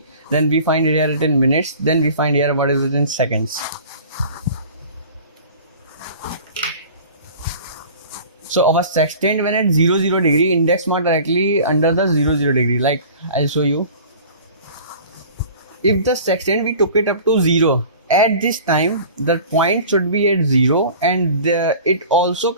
then we find it here in minutes, then we find here what is it in seconds. So our sextant when at 0 degree, index mark directly under the 0 degree. Like I'll show you. if the sextant we took it up to 0, at this time the point should be at 0, and it also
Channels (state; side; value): inverted; both; correlation -0.43